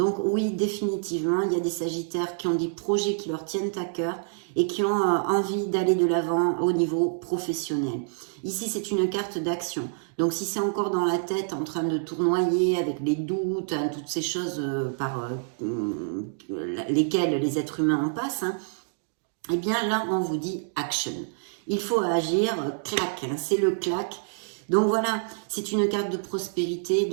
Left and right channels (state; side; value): silent; left; digital silence